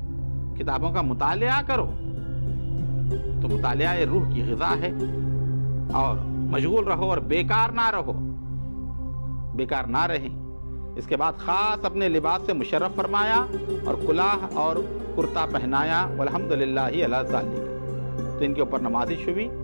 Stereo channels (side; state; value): both; inverted; correlation -1.00